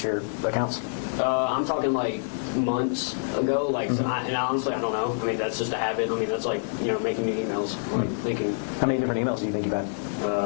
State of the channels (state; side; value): silent; right; digital silence